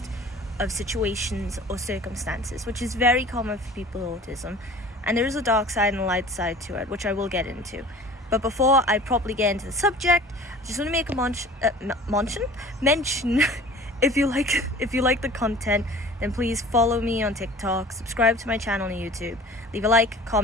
of situations or circumstances, which is very common for people with autism, and there is a dark side and a light side to it, which I will get into. But before I properly get into the subject, I just want to make a mention if you like the content, then please follow me on TikTok, subscribe to my channel on YouTube, leave a like,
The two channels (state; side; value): normal; both; correlation 0.43